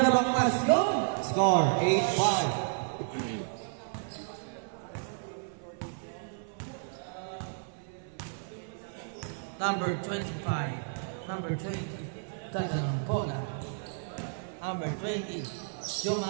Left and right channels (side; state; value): left; silent; 56 dB below the other